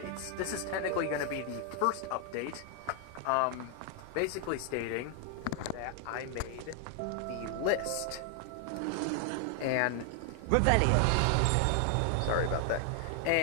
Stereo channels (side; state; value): both; different; correlation 0.00